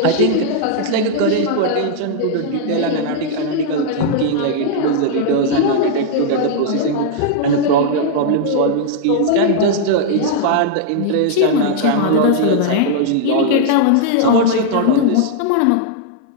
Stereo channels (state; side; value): different; both; correlation -0.01